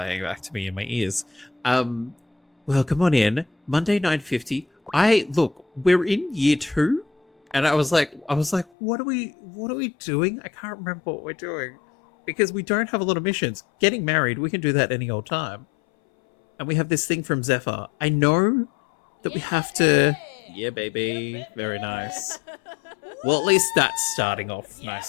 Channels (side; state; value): right; drops out; at 8.7 s